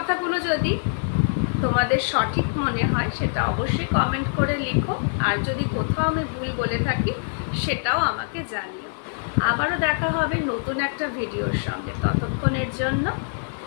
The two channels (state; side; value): silent; right; digital silence